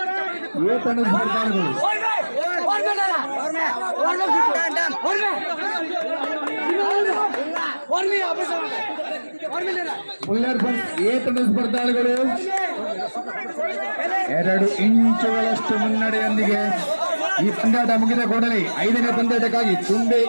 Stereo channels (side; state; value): both; inverted; correlation -1.00